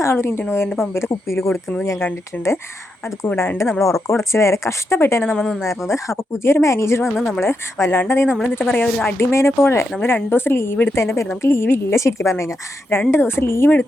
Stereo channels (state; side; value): normal; both; correlation 0.84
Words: ആളൊരു ഇന്ത്യൻ ഓയിലിൻ്റെ പമ്പിൽ കുപ്പിയിൽ കൊടുക്കുന്നത് ഞാൻ കണ്ടിട്ടുണ്ട്. അതുകൂടാണ്ട് നമ്മൾ ഉറക്കം ഉടച്ച് വേറെ കഷ്ടപ്പെട്ട് തന്നെ നമ്മൾ നിന്നായിരുന്നത്. അപ്പോൾ പുതിയൊരു മാനേജർ വന്ന് നമ്മൾ വല്ലാണ്ട് നമ്മൾ എന്താ പറയുക, ഒരു അടിമേനെ പോലെ നമ്മൾ 2 ദിവസം ലീവ് എടുത്തതിൻ്റെ പേരിൽ നമുക്ക് ലീവില്ല ശരിക്കും പറഞ്ഞു കഴിഞ്ഞാൽ. 2 ദിവസം ലീവ്